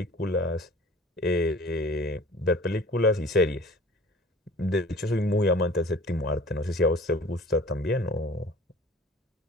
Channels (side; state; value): both; normal; correlation 0.46